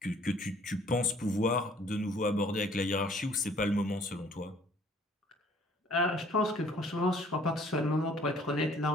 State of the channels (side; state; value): both; normal; correlation 0.57